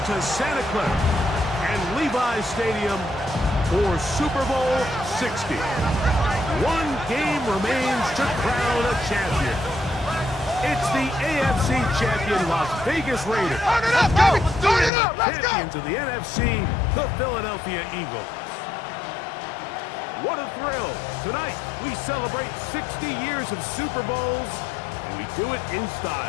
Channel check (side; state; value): right; drops out; at 14.9 s